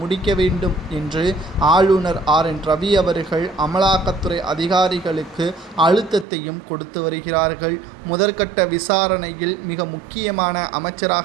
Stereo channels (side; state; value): left; drops out; at 6.2 s